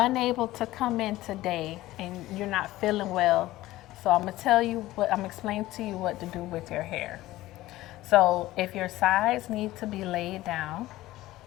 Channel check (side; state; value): right; quieter; 16.6 dB